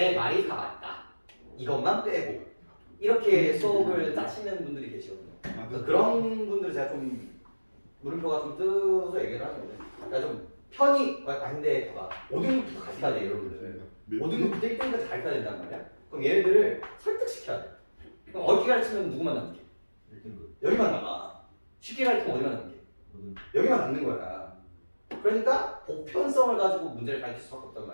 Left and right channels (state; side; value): inverted; both; correlation -1.00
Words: 말이 다 맞다. 이것만 빼고 이렇게 수업을 짜시는 분들이 계시거든요. 그래서 그런 분들 제가 좀 물음표가 좀 뜨서 얘기를 하는데 그러니까 좀 편히 근데 봐봐 5등급부터 같이 가야 돼 여러분들. 5등급부터 1등급까지 가르쳐야 된단 말이야. 그럼 얘네들을 설득시켜야 돼. 그럼 어떻게 가르치면 누구만 남게? 1등급. 여기만 남아. 쉽게 가르치면 어디만 남게? 여기만 남는 거야. 그러니까 보편성을 가지고 문제를 가르칠 수밖에 없단